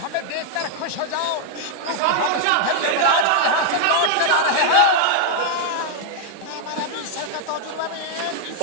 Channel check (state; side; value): different; both; correlation -0.01